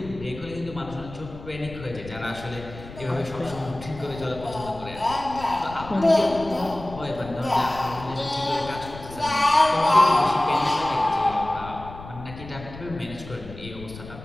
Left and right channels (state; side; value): noise; left; rumble, 14 dB below the sound